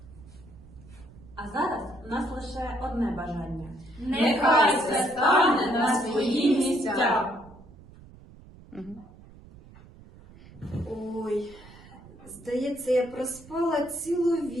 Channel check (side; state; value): right; noise; rumble, 21 dB below the sound